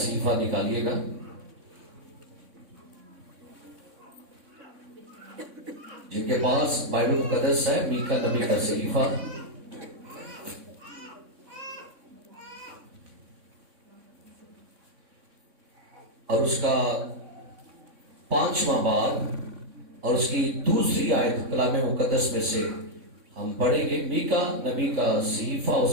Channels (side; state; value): left; late; 3.6 ms